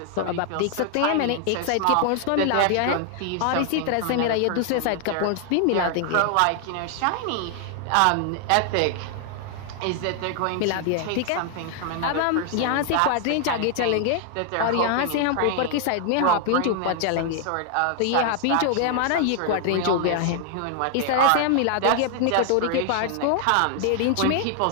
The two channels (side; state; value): both; different; correlation 0.00